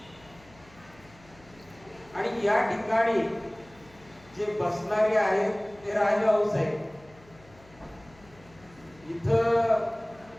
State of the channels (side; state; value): left; noise; hum, 26 dB below the sound